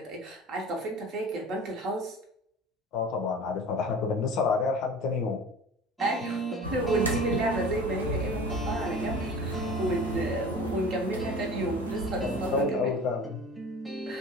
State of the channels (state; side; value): normal; both; correlation 0.39